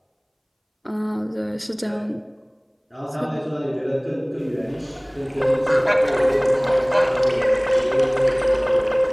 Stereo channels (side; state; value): both; identical; correlation 1.00